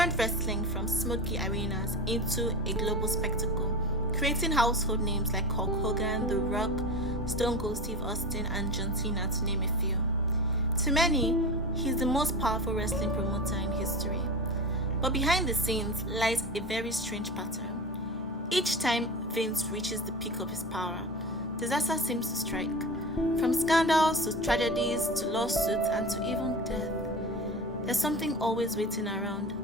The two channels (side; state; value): both; normal; correlation 0.29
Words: wrestling from smoky arenas into a global spectacle, creating household names like Hulk Hogan, The Rock, Stone Cold Steve Austin, and John Cena, to name a few. To many, he's the most powerful wrestling promoter in history. But behind the scenes lies a very strange pattern. Each time Vince reaches the peak of his power, disaster seems to strike. From scandals to tragedies to lawsuits and to even death. There's something always waiting around